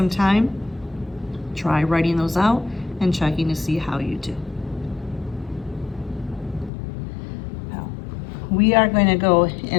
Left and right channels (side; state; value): right; drops out; at 6.7 s